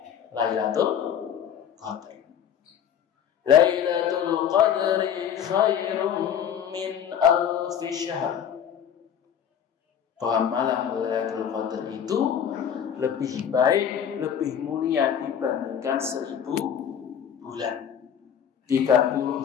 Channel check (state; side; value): quieter; right; 8.6 dB